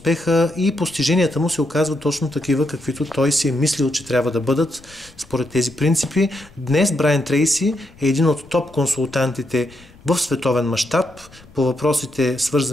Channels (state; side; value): noise; left; rumble, 24 dB below the sound